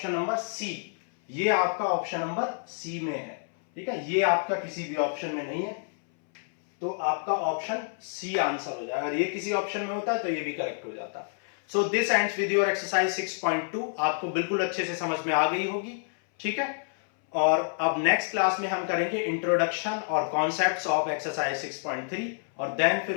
नंबर सी, ये आपका ऑप्शन नंबर सी में है, ठीक है, ये आपका किसी भी ऑप्शन में नहीं है, तो आपका ऑप्शन सी आंसर हो जाएगा, अगर ये किसी ऑप्शन में होता है तो ये भी करेक्ट हो जाता। So this ends with your exercise 6.2, आपको बिल्कुल अच्छे से समझ में आ गई होगी, ठीक है। और अब नेक्स्ट क्लास में हम करेंगे इंट्रोडक्शन और कॉन्सेप्ट्स ऑफ एक्सरसाइज 6.3, और देन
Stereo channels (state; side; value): silent; right; 59 dB below the other